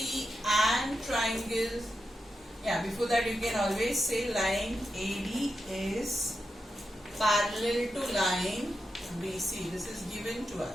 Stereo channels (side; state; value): both; normal; correlation 0.88